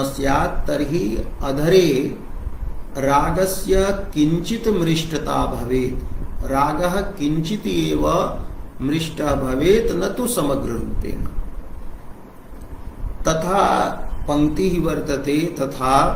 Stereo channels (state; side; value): identical; both; correlation 1.00